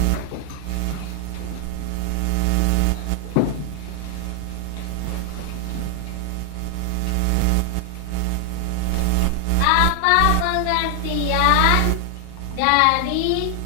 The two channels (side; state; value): both; different; correlation 0.00